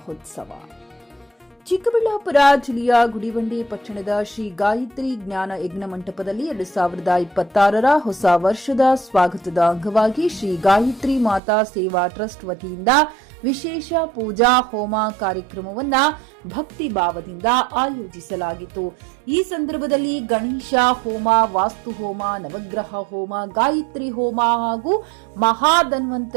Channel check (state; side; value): drops out; left; at 11.4 s